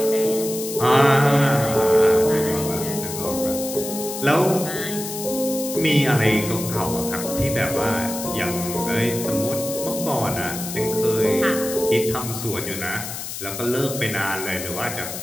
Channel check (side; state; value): left; noise; hiss, 8 dB below the sound